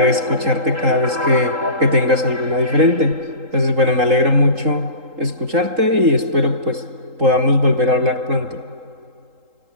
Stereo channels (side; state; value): left; late; 3.8 ms